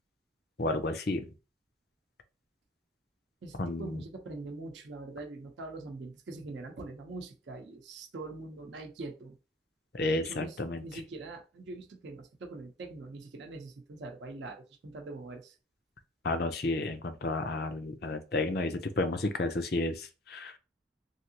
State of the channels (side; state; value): both; normal; correlation 0.45